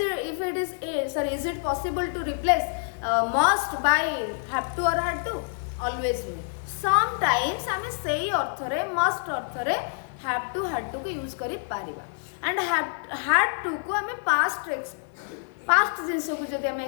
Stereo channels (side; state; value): right; silent; 60 dB below the other